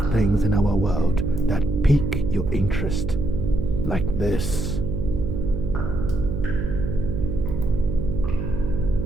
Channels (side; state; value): right; noise; hum, 3 dB below the sound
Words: things in our world that pique your interest, like this.